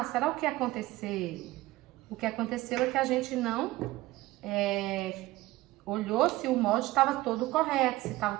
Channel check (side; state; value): left; quieter; 18.3 dB